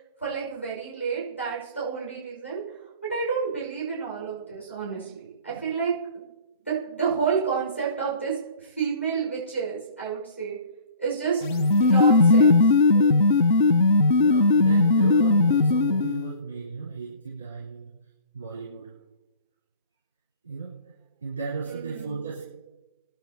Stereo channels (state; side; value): inverted; both; correlation -0.48